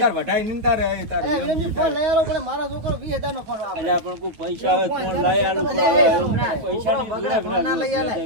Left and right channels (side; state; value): left; late; 9.3 ms